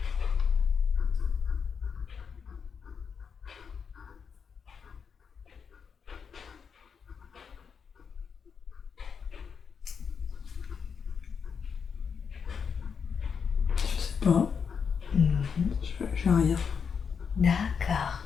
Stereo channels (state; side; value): quieter; right; 6.4 dB